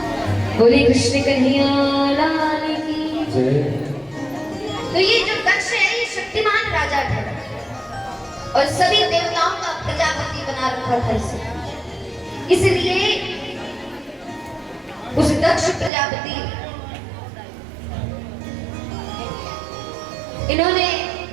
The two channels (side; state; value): left; drops out; at 15.9 s